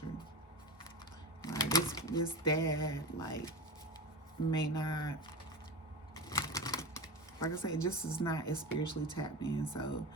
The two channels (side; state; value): both; normal; correlation 0.26